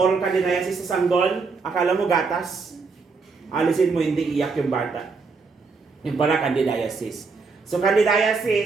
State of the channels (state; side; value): quieter; left; 4.5 dB